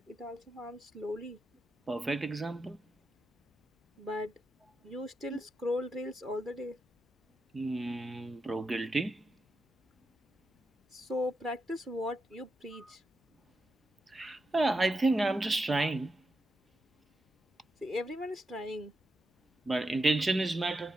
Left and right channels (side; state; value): both; normal; correlation 0.86